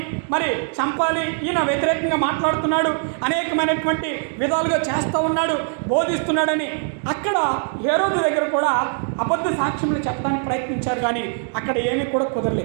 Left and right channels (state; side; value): silent; left; 57 dB below the other